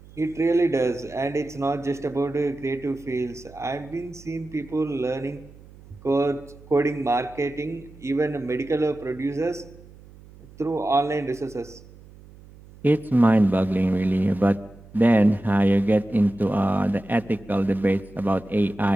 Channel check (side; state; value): right; noise; hum, 22 dB below the sound